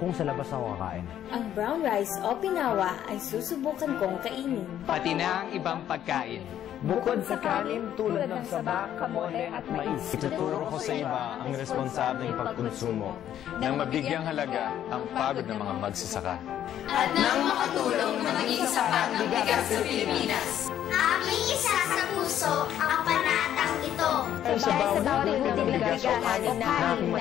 sa labas ako kakain. Ang brown rice o pinawa ay susubukan kong kainin. Pati na ang ibang pagkain. Bukod sa kanin tulad ng saba, kamote at mais. Ituturo ko sa iba ang responsableng pagkonsumo nang mabigyang halaga ang pagod ng mga magsasaka. At nang makatulong na maging sapat ng bigas sa Pilipinas. Aming isa sa puso ang panatang ito. Dahil sa bawat butil ng bigas o kanin na aking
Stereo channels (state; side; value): quieter; right; 10.9 dB